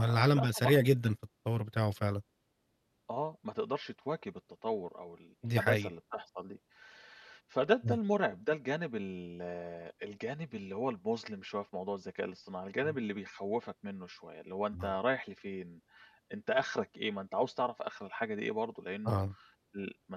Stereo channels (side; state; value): both; identical; correlation 1.00